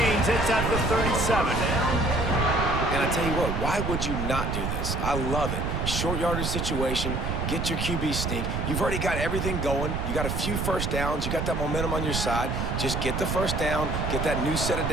It's at the 37. And I tell you what, why would you not do this? I love it. Short yardage situation, get your QB sneak. You've already got everything going. You got a few 1st downs. You got that momentum on your side. Just get the 1st down, get that new set of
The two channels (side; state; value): right; noise; rumble, 1 dB below the sound